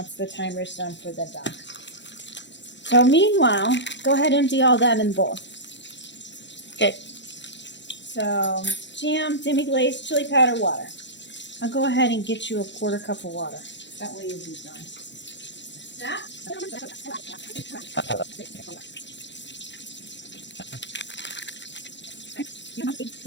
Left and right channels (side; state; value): right; late; 0.52 ms